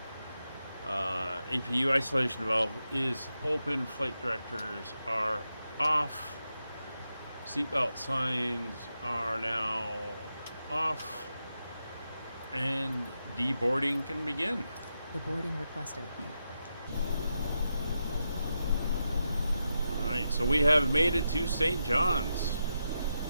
APU isolation valve is open. Flight directors are off. Seatbelt signs are now off. And deboarding can begin. The boarding requested. Alright, so we have made it to St. John's.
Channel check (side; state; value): both; inverted; correlation -0.86